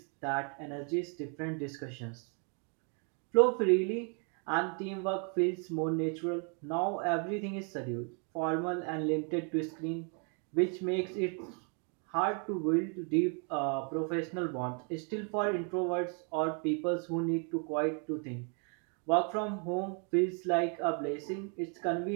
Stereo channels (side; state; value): left; quieter; 39.1 dB